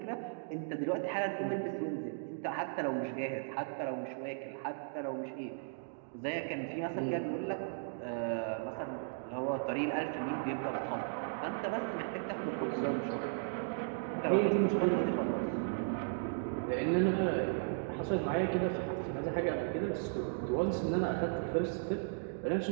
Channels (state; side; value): silent; left; digital silence